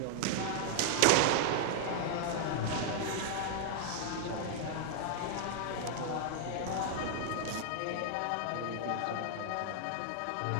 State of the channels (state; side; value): different; both; correlation -0.01